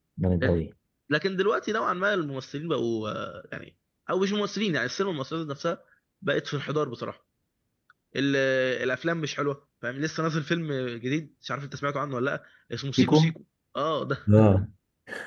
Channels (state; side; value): identical; both; correlation 1.00